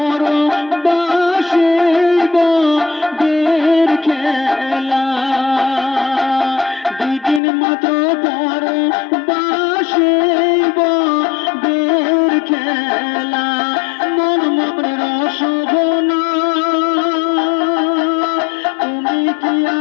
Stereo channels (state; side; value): drops out; right; at 7.4 s